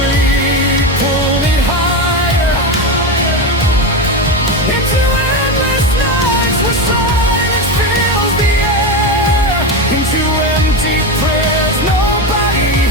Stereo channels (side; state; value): both; normal; correlation 0.16